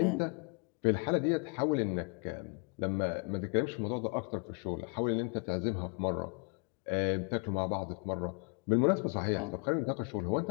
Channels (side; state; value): right; quieter; 38.5 dB